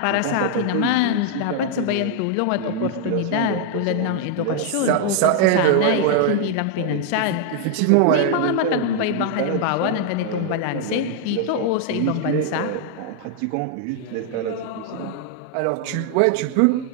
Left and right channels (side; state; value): both; different; correlation 0.00